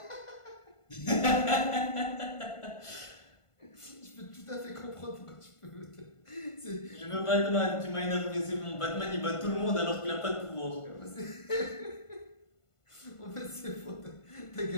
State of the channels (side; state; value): right; late; 1.5 ms